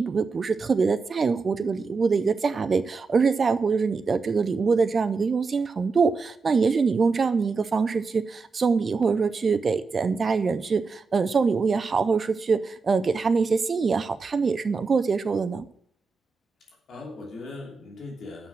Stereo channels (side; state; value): left; quieter; 4.6 dB